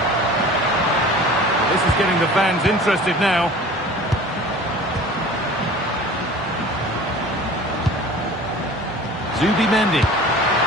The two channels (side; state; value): both; normal; correlation 0.42